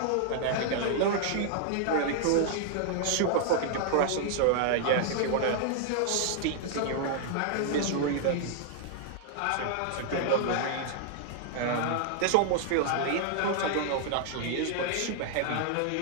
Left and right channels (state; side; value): different; both; correlation 0.00